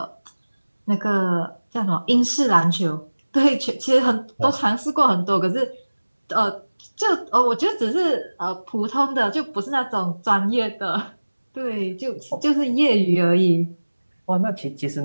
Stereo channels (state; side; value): inverted; both; correlation -1.00